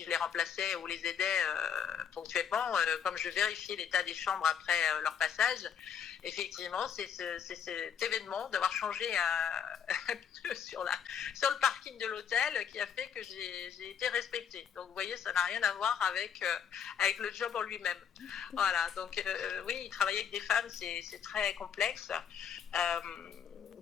je les remplaçais ou les aidais ponctuellement, comme je vérifiais l'état des chambres après leur passage. Effectivement, c'est cet événement d'avoir changé un pneu sur le parking de l'hôtel qui a fait que j'ai été respectée. Donc, vous voyez, ça n'a rien à voir avec le job en lui-même. Voilà, donc oui, travailler avec des femmes, c'est très complexe.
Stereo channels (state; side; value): quieter; right; 8.0 dB